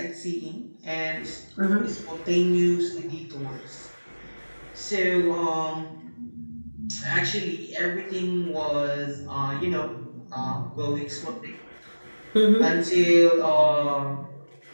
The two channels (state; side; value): inverted; both; correlation -1.00